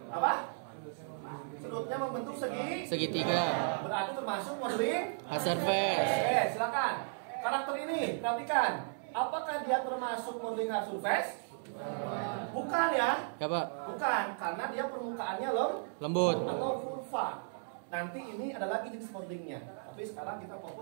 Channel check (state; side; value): silent; left; 54 dB below the other